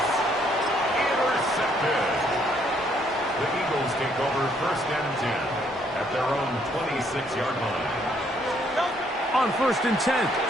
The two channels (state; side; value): normal; both; correlation 0.68